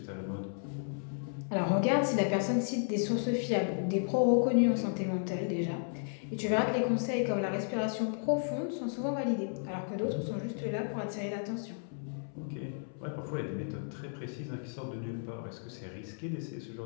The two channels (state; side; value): silent; right; 55 dB below the other